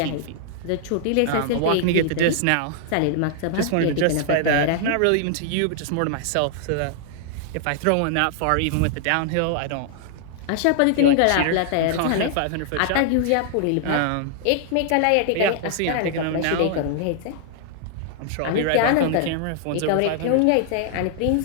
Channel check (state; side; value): different; both; correlation -0.01